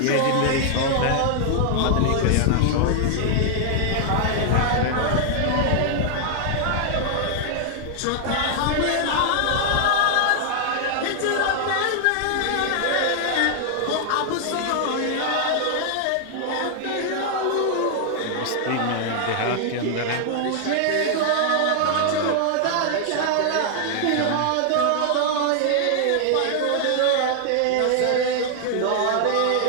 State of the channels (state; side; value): different; both; correlation 0.00